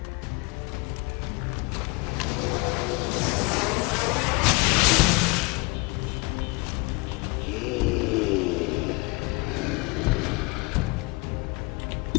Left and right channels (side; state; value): right; quieter; 27.7 dB